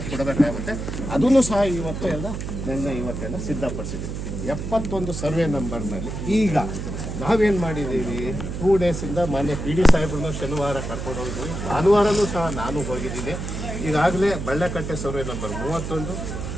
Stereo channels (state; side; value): noise; right; hum, 5 dB below the sound